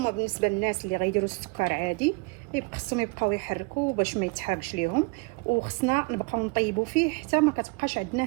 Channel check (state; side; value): quieter; left; 29.2 dB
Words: بالنسبه للناس اللي غيديروا السكر عادي خصهم يبقاو يحركوا باش ما يتحرقش ليهم. وخصنا نبقاو نطيبوا فيه حتى ما كتبقاش